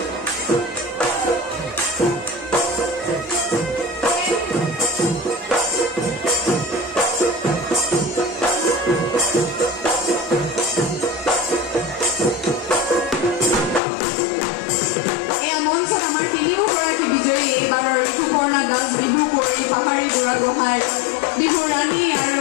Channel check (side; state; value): right; drops out; at 13.8 s